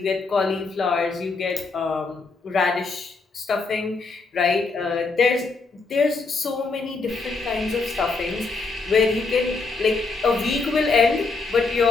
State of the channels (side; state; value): right; quieter; 4.1 dB